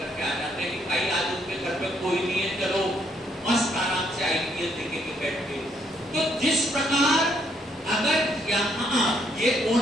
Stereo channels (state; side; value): normal; both; correlation 0.71